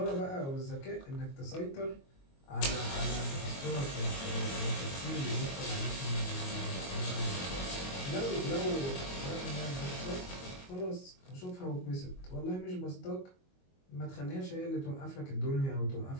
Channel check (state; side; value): late; right; 22 ms